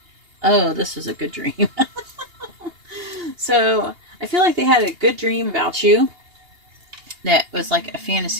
oh, this is a good dream. So, I feel like they had a good dream about you that was like a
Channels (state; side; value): late; left; 2.8 ms